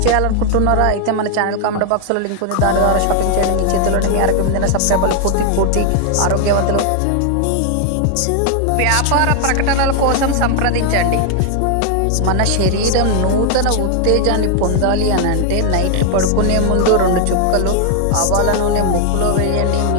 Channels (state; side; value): different; both; correlation 0.00